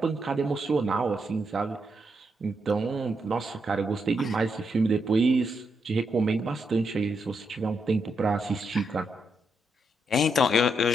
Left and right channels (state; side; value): normal; both; correlation 0.81